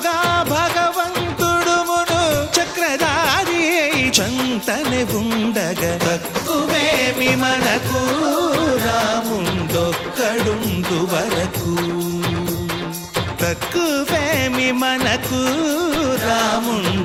భగవంతుడుమును చక్రధారి చంతనే ఉండగా తక్కువేమి మనకు రాముండొక్కడుండు వరకు తక్కువేమి మనకు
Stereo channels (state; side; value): identical; both; correlation 1.00